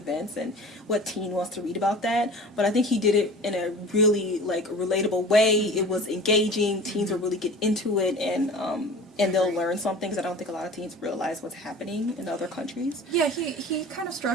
and what teen wants to read about that? But I think he did it in a really like relatable way. It was engaging. Teens will really get into it, and they'll learn some things. I don't think a lot of teens realize what's happening in other countries. Yeah, he kind of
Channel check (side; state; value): both; normal; correlation 0.40